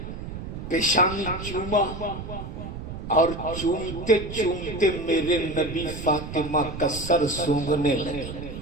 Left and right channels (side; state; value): right; noise; rumble, 8 dB below the sound